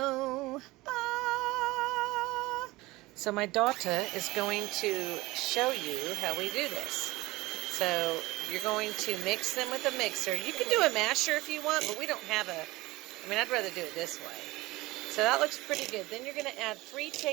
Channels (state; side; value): quieter; left; 20.4 dB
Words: Ah. So my daughter is going to show you how we do this. So you're going to mix them with a mixer. You can do a masher if you want, but we don't have a, I mean, I'd rather do it this way. So that looks pretty good. Then you're going to add 3